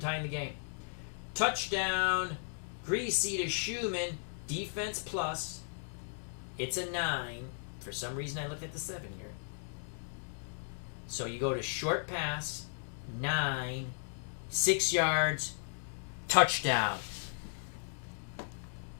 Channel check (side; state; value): right; silent; digital silence